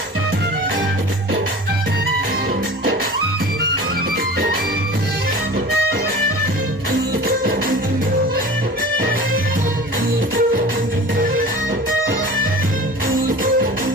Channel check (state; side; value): normal; both; correlation 0.39